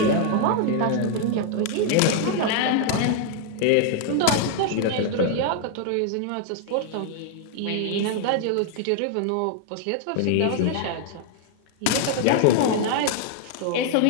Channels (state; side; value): different; both; correlation 0.00